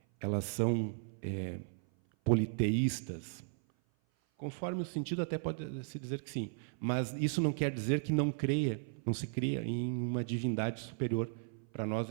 elas são politeístas. Conforme o sentido, até pode se dizer que sim, mas isso não quer dizer que não se cria em uma divindade superior. Para nós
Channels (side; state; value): left; silent; 54 dB below the other